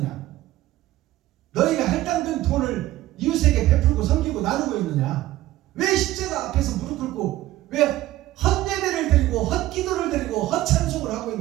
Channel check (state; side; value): quieter; left; 15.6 dB